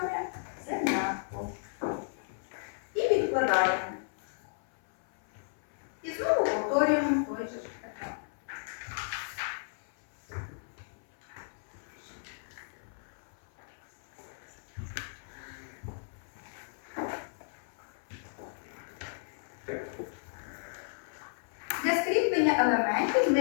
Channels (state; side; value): silent; right; 55 dB below the other